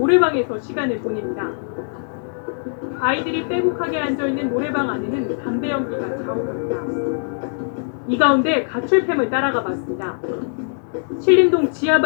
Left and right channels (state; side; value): silent; right; digital silence